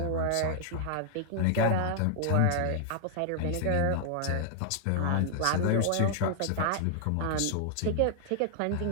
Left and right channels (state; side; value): different; both; correlation 0.00